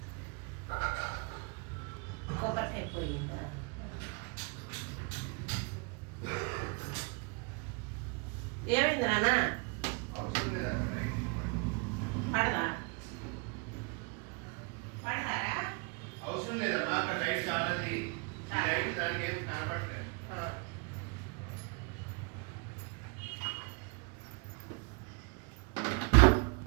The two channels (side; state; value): left; quieter; 33.1 dB